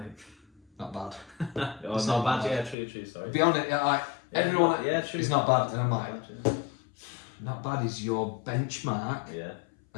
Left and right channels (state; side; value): drops out; right; at 2.8 s